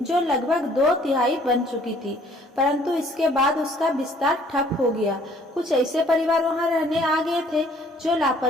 जो लगभग 2/3 बन चुकी थी, परंतु इसके बाद उसका विस्तार ठप हो गया। कुछ ऐसे परिवार वहां रहने आ गए थे जो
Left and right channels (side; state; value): both; normal; correlation 0.59